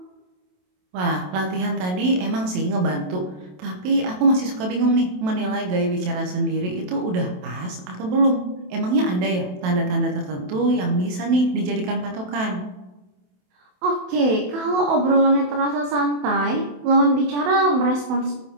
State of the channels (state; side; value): late; left; 27 ms